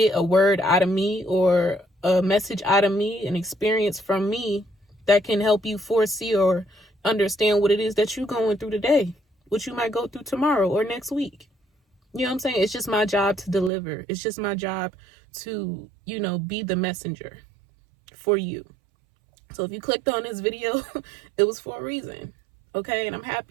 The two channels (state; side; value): drops out; left; at 13.7 s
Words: a word out of me or a message out of me, an experience from me that can help you foresee or understand what it is that you're going through today, what you might go through tomorrow or next week. You know what I'm saying? It's just my job to deliver. It's just my job to, be the messenger for you. So if you clicked on this video, it was for a reason. Okay? And I'm